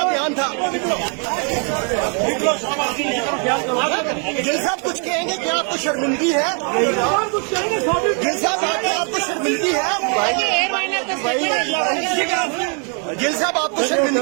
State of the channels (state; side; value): quieter; left; 39.6 dB